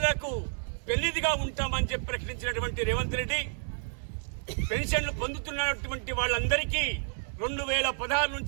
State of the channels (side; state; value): left; silent; digital silence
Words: పెళ్లిదిగా ఉంటామని చెప్పి ప్రకటించినటువంటి రేవంత్ రెడ్డి పెన్షన్లు పొందుతున్నటువంటి వాళ్ళందరికీ 2016